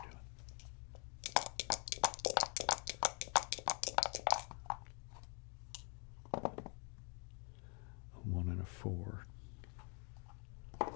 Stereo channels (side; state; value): right; quieter; 37.4 dB